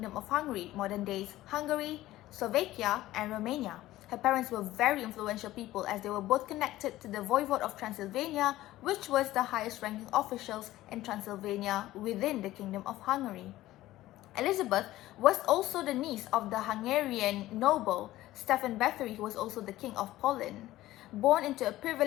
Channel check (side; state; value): right; quieter; 15.8 dB